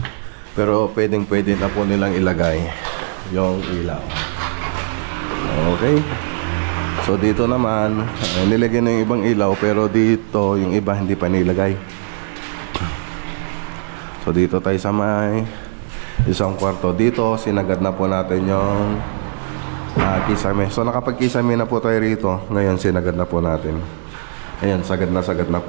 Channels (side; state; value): left; silent; digital silence